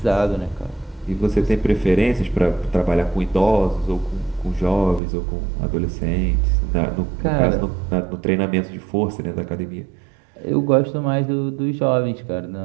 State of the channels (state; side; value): drops out; left; at 5.0 s